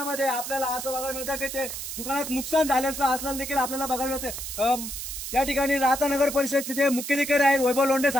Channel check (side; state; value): right; noise; hiss, 7 dB below the sound